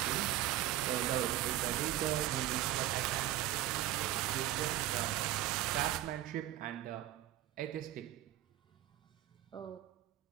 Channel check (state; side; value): quieter; left; 13.5 dB